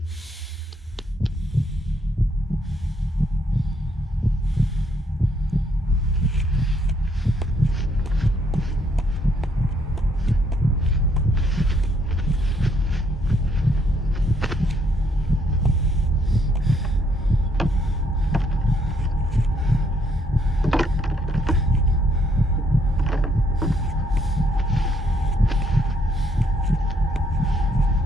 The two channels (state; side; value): normal; both; correlation 0.71